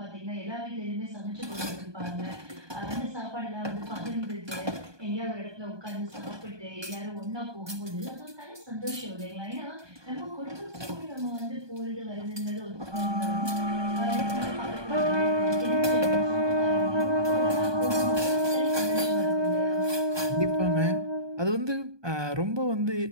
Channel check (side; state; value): left; late; 1.2 ms